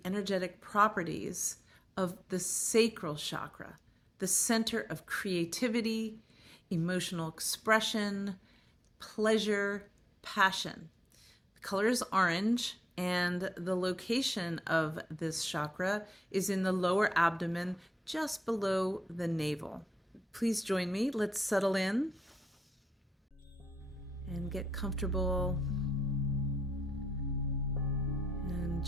energetic properties of the Sacral Chakra, the center of creativity, emotional expression, pleasure, passion. The color is orange, and the location of this chakra is in the lower abdomen, just below the navel. Please join me. Let's settle in and get comfortable, and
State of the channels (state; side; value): normal; both; correlation 0.86